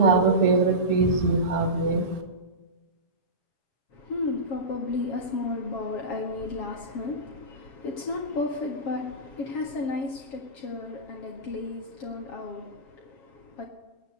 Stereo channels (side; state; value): right; late; 7.3 ms